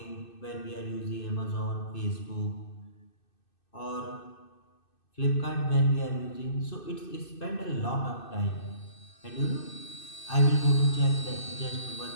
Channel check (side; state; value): right; late; 2.6 ms